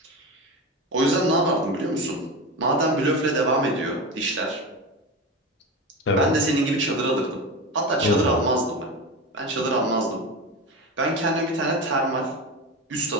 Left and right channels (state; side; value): normal; both; correlation 0.23